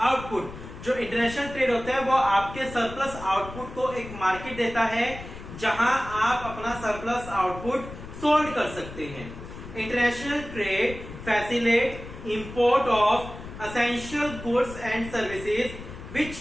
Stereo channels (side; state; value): left; noise; rumble, 13 dB below the sound